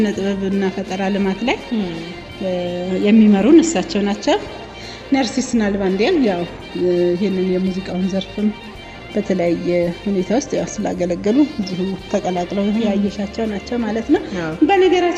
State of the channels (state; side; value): identical; both; correlation 1.00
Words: ጥበብና ፈጠራ ልማት ላይ የሚመሩን እሳቸው ናቸው። ነርሲስ ናልባንዲያም ያው ይህንን የሙዚቃውን ዘርፍም በተለያየ ሁኔታ ውስጥ ያው ስላገለገሉ እዚሁ ተቀላቅለው ያየሻቸው ናቸው ማለት ነው።